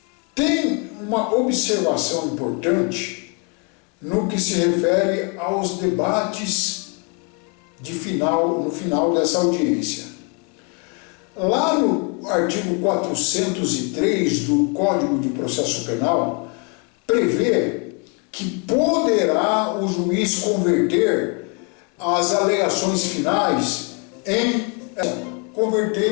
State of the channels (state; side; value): quieter; right; 35.2 dB